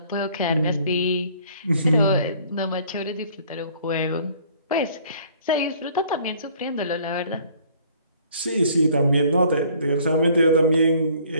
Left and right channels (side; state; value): both; inverted; correlation -0.57